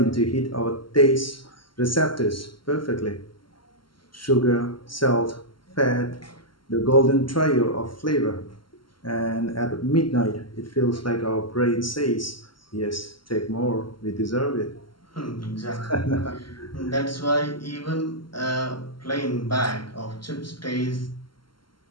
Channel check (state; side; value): late; right; 0.72 ms